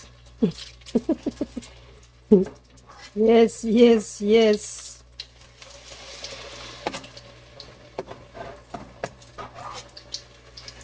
Yes, yes, yes.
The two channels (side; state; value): both; identical; correlation 1.00